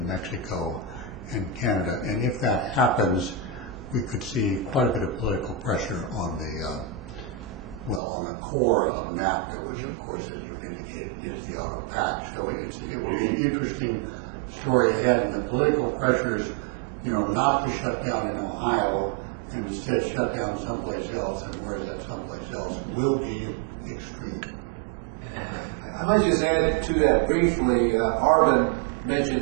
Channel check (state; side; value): drops out; left; at 8.0 s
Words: Mexico and Canada? And if that happens, we could see quite a bit of political pressure on the on the core of NAFTA, which of course, as you've indicated, is the auto patch. So it will be an interesting story ahead, and the political pressures, not to shut down in Ohio and instead shut down someplace else, and where is that someplace else, will be extreme. I might just add to that briefly. Arvin mentioned